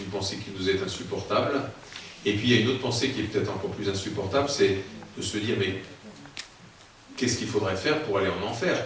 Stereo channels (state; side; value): identical; both; correlation 1.00